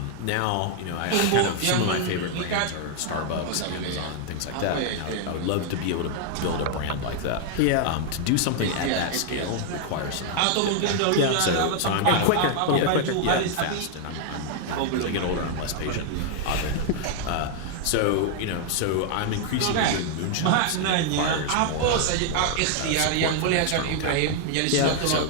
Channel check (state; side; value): different; both; correlation 0.00